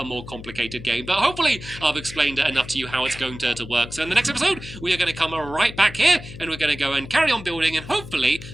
more complicated game, but hopefully I've explained enough to you how it's going to work. So in the next episode, we are going to come right back here, and we're going to go and carry on building, and hopefully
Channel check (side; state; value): left; noise; hum, 13 dB below the sound